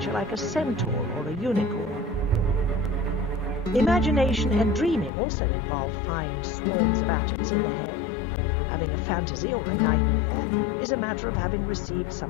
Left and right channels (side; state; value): right; drops out; at 5.1 s